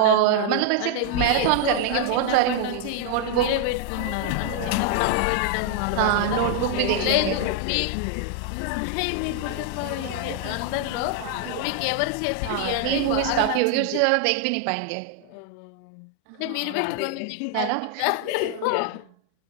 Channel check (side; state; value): both; different; correlation 0.00